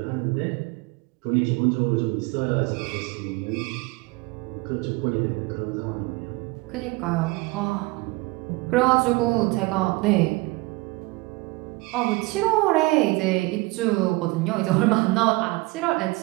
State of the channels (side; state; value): left; quieter; 23.2 dB